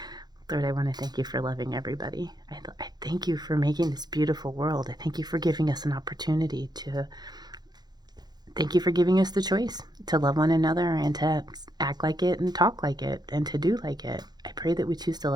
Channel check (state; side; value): late; left; 0.20 ms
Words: Lord, I want to thank you for loving everybody. I thank you for making this beautiful world. I thank you for giving us an opportunity to... Thank you for giving us the choice to love one another and to act like it and talk like it and to do like it. I pray that we choose to